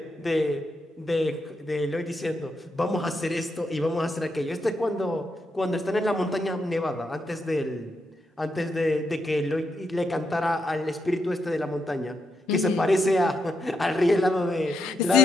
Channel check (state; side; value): normal; both; correlation 0.82